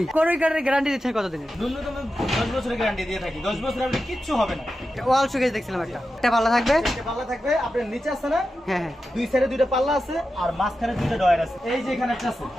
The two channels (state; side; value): normal; both; correlation 0.91